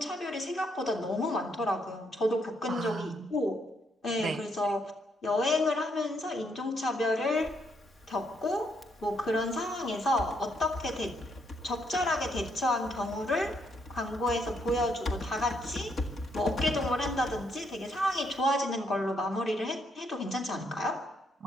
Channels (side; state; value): both; normal; correlation 0.74